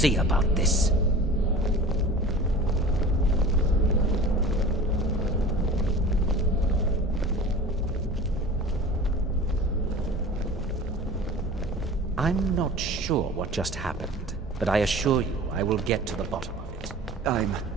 about this. I'm not sure what just happened, but I assure you I will get to the bottom of it.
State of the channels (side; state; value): both; normal; correlation 0.39